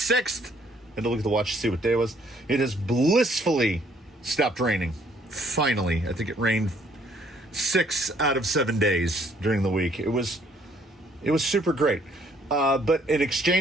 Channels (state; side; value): normal; both; correlation 0.64